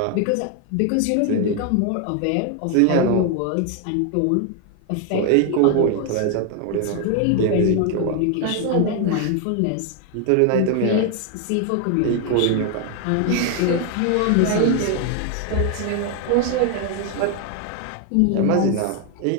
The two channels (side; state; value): both; different; correlation 0.00